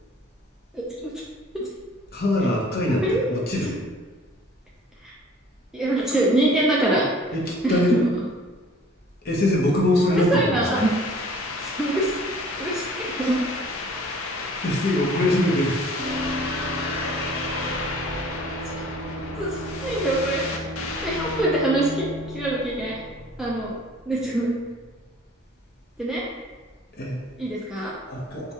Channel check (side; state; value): both; normal; correlation 0.51